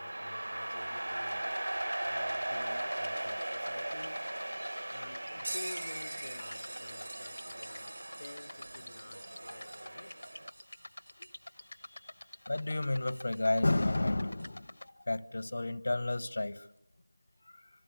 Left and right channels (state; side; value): inverted; both; correlation -0.98